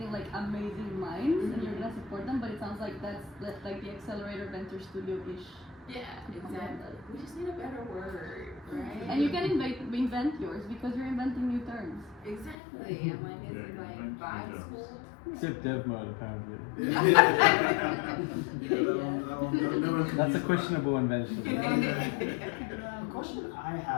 like amazing minds and you're gonna support them, but it sounds like that's like the accelerator venture studio-ish. Yeah, exactly. We just need a better word, right? And you can invent yours because you're inventing new terms. Exactly. I'm like, is it like vibe school? Except dev mode, apparently. That's a questionable invention. A question I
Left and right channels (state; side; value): drops out; right; at 12.6 s